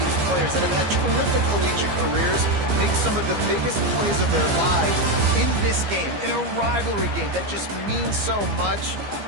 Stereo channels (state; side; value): late; left; 15 ms